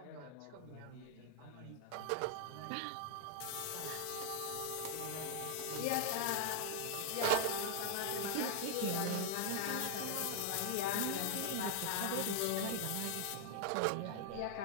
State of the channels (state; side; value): different; both; correlation 0.00